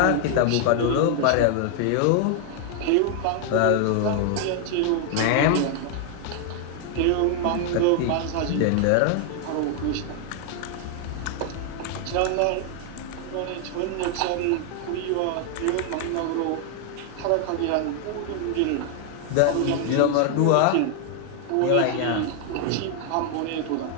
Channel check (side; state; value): both; different; correlation 0.00